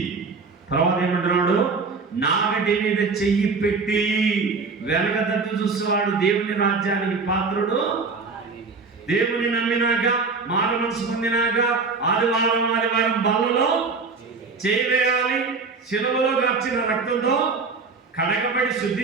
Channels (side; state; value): left; quieter; 4.5 dB